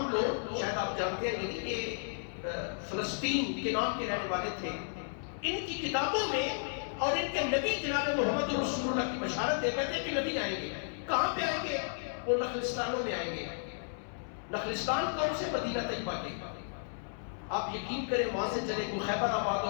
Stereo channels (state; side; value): silent; right; 55 dB below the other